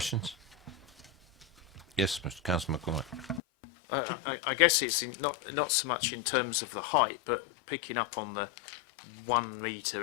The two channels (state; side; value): drops out; right; at 3.4 s